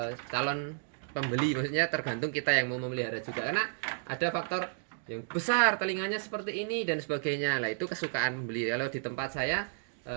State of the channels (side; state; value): left; silent; digital silence